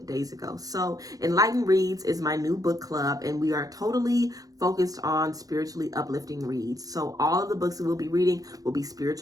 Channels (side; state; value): left; late; 0.17 ms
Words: days ago. So Enlightened Reads is my new book club, and we are totally focused on spiritually uplifting reads. So all of the books that we'll be reading will be